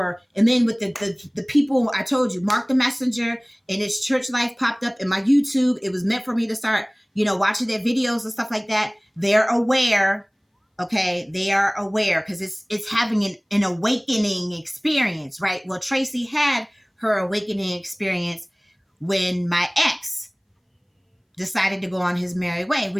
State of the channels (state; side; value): identical; both; correlation 1.00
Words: And then with the people, I told you, Mark the Messenger and his church life popped up in my YouTube. It was meant for me to start, watching their videos and stuff like that. They're aware. Okay, they are aware because it's having an awakening experience, right? Well, Traci had her awakening experience when my ex decided to go on his merry way,